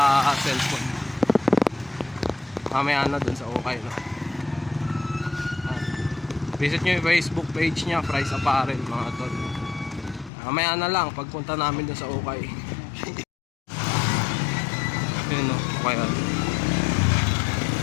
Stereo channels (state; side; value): drops out; right; at 10.3 s